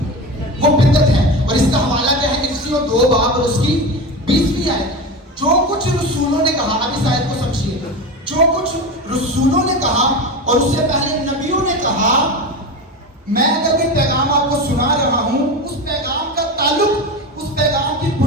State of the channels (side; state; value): both; normal; correlation 0.25